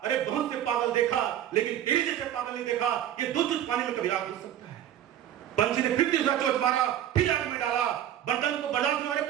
अरे बहुत से पागल देखा, लेकिन तेरे जैसे पागल नहीं देखा, ये 2 चोंच पानी में कभी आग बुझ सकता है। पंछी ने फिर तीसरा चोंच मारा, फिर आग में डाला, बंदर को बर्दाश्त नहीं हुआ। अरे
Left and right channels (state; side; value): quieter; left; 11.2 dB